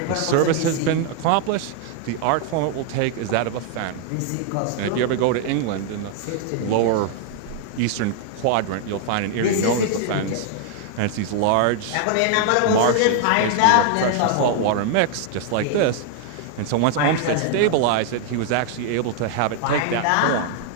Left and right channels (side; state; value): both; different; correlation 0.00